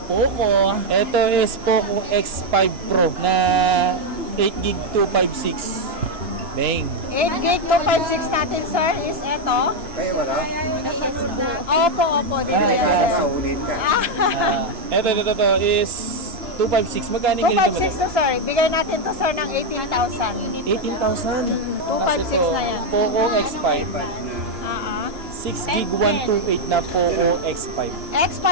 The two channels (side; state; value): left; late; 2.9 ms